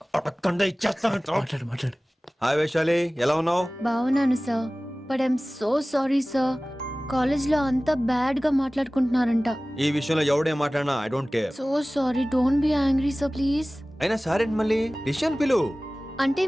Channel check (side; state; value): both; normal; correlation 0.98